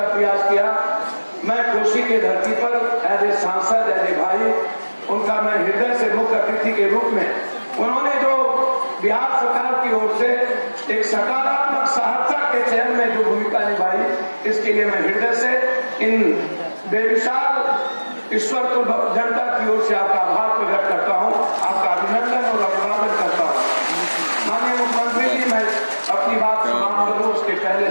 प्रयास किया। मैं कोसी के धरती पर एज ए सांसद, एज ए भाई, उनका मैं हृदय से मुख्य अतिथि के रूप में, उन्होंने जो बिहार सरकार की ओर से एक सकारात्मक सहरसा के चयन में जो भूमिका निभाई, इसके लिए मैं हृदय से इन बेविशाल ईश्वर को जनता की ओर से आपका आभार प्रकट करता हूं, आपका अभिनंदन और अभिवादन करता हूं। माननीय मुख्यमंत्री जी, मैं अपनी बात समाप्त करूं उसके पहले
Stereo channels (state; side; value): inverted; both; correlation -1.00